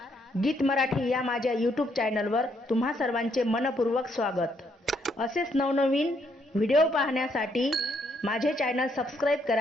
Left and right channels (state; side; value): normal; both; correlation 0.73